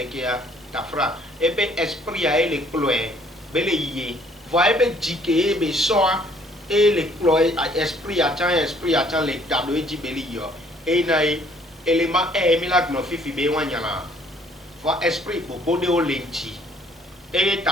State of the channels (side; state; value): both; normal; correlation 0.61